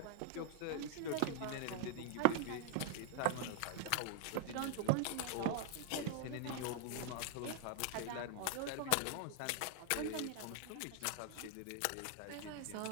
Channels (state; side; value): different; both; correlation 0.00